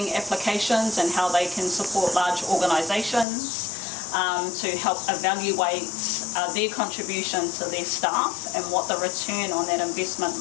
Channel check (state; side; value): drops out; right; at 3.2 s